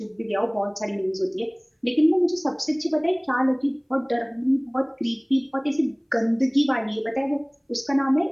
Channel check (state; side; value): identical; both; correlation 1.00